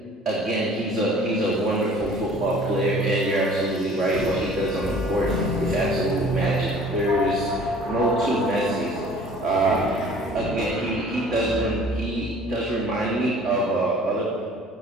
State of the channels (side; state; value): both; normal; correlation 0.50